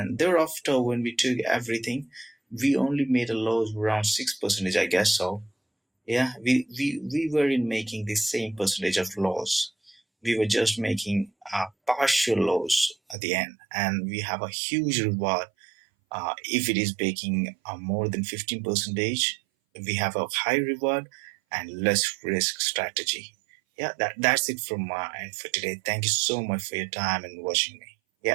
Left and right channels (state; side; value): drops out; left; at 13.2 s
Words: thereafter when we took everything, we only made a loss around 6 percentage, I guess so. Yeah, we weren't making the same percentage of loss. We were just making a partial loss at the end, and we have a huge reward if it is baking more than 15 percentage. We have a high reward and less risk strategy. Yeah, that's it from my end for today. Thank you so much for your time and watching me.